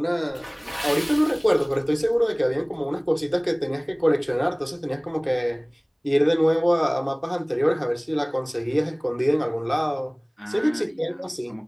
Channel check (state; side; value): identical; both; correlation 1.00